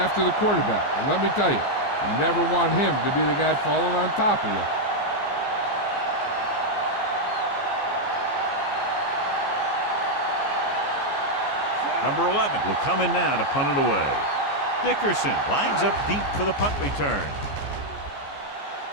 the quarterback. And let me tell you, you never want him to be the guy falling on top of you. Number 11 will come in now to punt it away. Dickerson lines up deep for the punt return.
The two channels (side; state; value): right; late; 14 ms